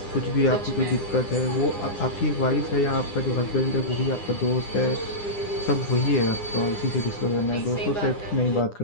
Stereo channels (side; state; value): right; late; 9.8 ms